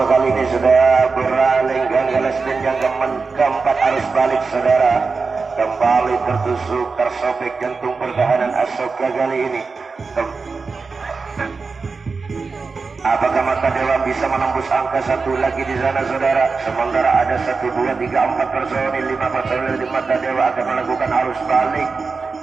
kali ini lesben yang keempat arus balik saudara. Kembali tertusuk, tersobek jantung pertahanan Asoka kali ini. Apakah Mata Dewa bisa menembus angka satu lagi di sana saudara? Sementara ada 1, 2, 3, 4 personil, 5 personil di Mata Dewa akan melakukan arus balik.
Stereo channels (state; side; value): quieter; left; 4.5 dB